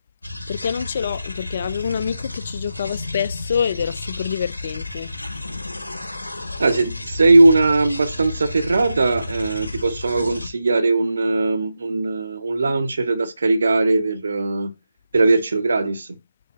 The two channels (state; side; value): inverted; both; correlation -0.90